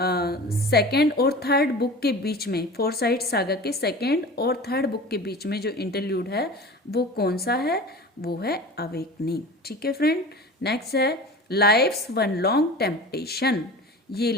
और थर्ड बुक के बीच में, फोरसाइट सागा के सेकेंड और थर्ड बुक के बीच में जो इंटरल्यूड है वो कौन सा है? वो है अवेकनिंग, ठीक है फ्रेंड। नेक्स्ट है लाइफ्स वन लॉन्ग टेम्पटेशन। ये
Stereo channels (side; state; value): both; normal; correlation 0.36